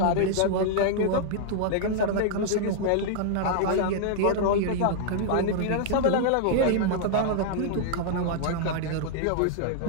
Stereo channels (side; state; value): both; different; correlation -0.01